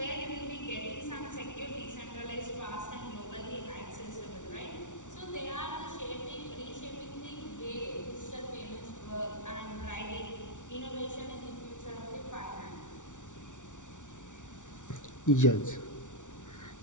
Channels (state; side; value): late; right; 0.86 ms